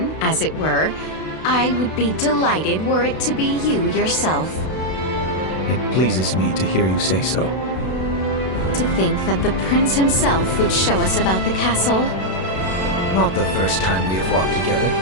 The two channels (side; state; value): right; late; 32 ms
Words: as it were. I would be delighted were it to be you yourself. It pleases me to hear you say so. To think that the prince himself would show us about the castle. Not the first time we have walked together.